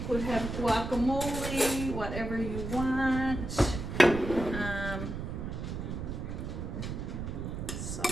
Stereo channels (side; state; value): right; noise; rumble, 5 dB below the sound